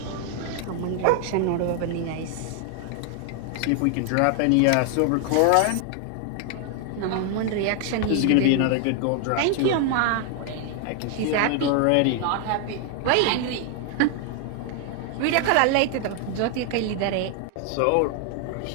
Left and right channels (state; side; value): different; both; correlation 0.00